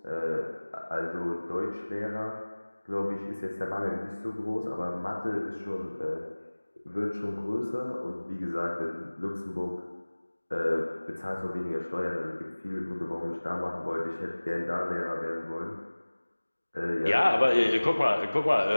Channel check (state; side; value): inverted; both; correlation -1.00